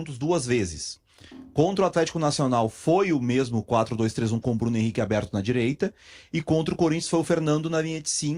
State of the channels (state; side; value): identical; both; correlation 1.00